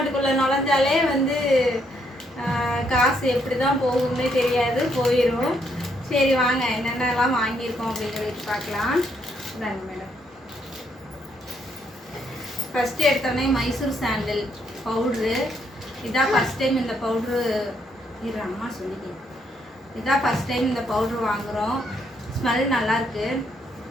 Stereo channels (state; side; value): normal; both; correlation 0.74